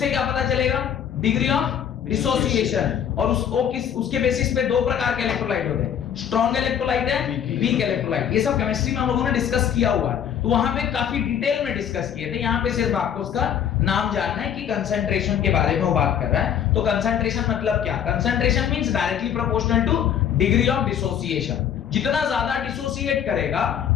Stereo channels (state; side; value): quieter; right; 8.9 dB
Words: क्या पता चलेगा? Degree of dissociation. और उसके बेसिस पे दो प्रकार के इलेक्ट्रोलाइट होते हैं, स्ट्रॉन्ग इलेक्ट्रोलाइट है, वीक इलेक्ट्रोलाइट। ये सब केमिस्ट्री में हम लोगों ने डिस्कस किया हुआ है, तो वहां पे काफी डिटेल में डिस्कस किए थे। यहाँ पे सिर्फ आपको उसका नाम जानना है कि कंसंट्रेशन के बारे में वो बात कर रहा है। तो कंसंट्रेशन मतलब क्या? Concentration means directly proportional two degree of dissociation. जितना ज्यादा डिसोसिएट करेगा